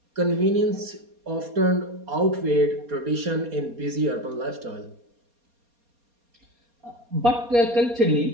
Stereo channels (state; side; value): late; left; 4.2 ms